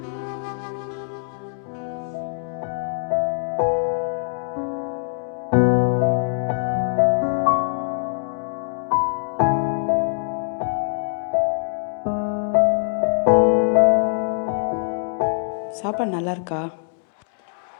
சாப்பாடு நல்லா இருக்கா?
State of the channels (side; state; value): right; silent; 63 dB below the other